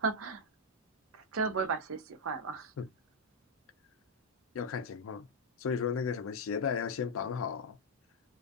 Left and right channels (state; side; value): normal; both; correlation -0.03